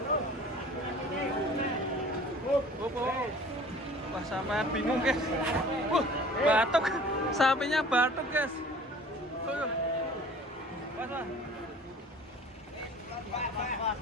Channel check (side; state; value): both; normal; correlation 0.46